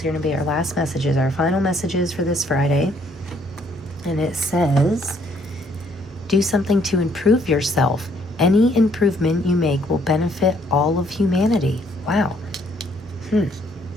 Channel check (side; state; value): both; normal; correlation 0.66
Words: going to be our last messages, our final messages for this Friday. And it says, do something to improve yourself. Any improvement you make will benefit all of humanity. Wow.